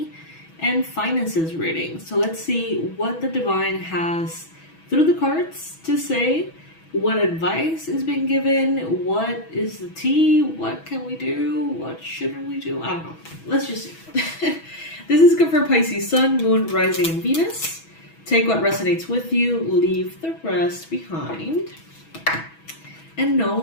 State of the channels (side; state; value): right; late; 6.2 ms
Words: and finances reading. So let's see what the divine has through the cards to say, what advice is being given, what is the tea, what can we do, what shouldn't we do, I don't know. Let's just see. This is good for Pisces, Sun, Moon, Rising, and Venus. Take what resonates with you, leave the rest behind. And know